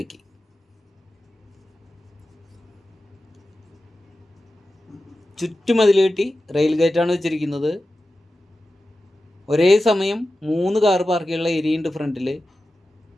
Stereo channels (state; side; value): normal; both; correlation 0.93